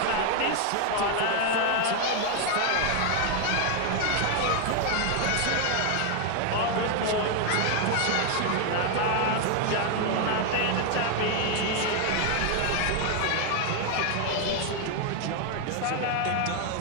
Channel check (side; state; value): both; different; correlation 0.01